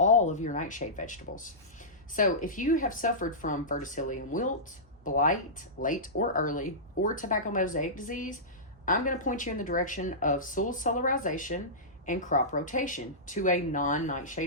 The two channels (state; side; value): normal; both; correlation -0.17